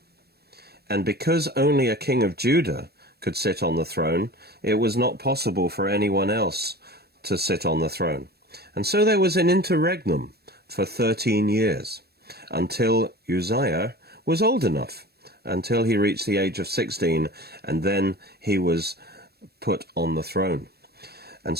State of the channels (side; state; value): left; late; 0.47 ms